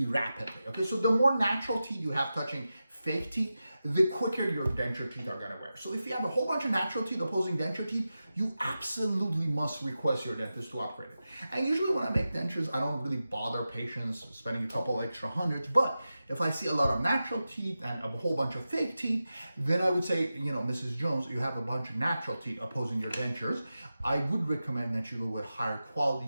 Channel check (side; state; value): both; inverted; correlation -0.92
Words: rapidly. Okay, so the more natural teeth you have touching fake teeth, the quicker your denture teeth are gonna wear. So if you have a whole bunch of natural teeth opposing denture teeth, you absolutely must request your dentist to upgrade it. And usually when I make dentures, I don't really bother patients spending a couple extra hundreds, but if I see a lot of natural teeth and a whole bunch of fake teeth, then I would say, you know, Mrs. Jones, you have a bunch of natural teeth opposing your dentures. I would recommend that you go with higher